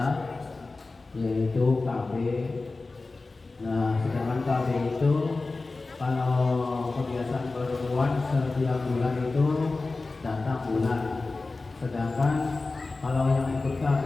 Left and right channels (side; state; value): right; quieter; 3.6 dB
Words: yaitu KB. Nah, sedangkan KB itu kalau kebiasaan perempuan setiap bulan itu datang bulan. Sedangkan kalau yang ikut KB